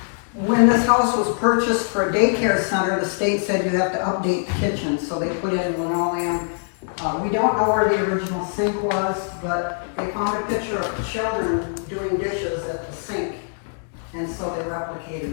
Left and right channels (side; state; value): right; silent; digital silence